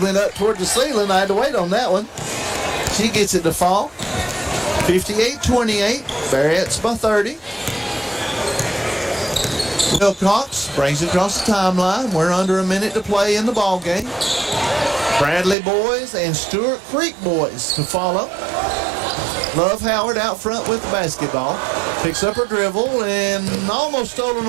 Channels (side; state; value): left; drops out; at 15.6 s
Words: up toward the ceiling. I had to wait on that one. She gets it to fall. 58-28. Barrett's by 30. Wilcox brings it across the timeline. We're under 1 minute to play in the ball game. Bradley boys and Stewart Creek boys to follow. Love Howard out front with the basketball. Picks up her dribble and almost stolen